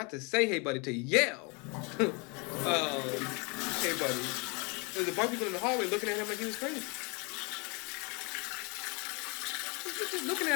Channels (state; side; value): quieter; right; 31.2 dB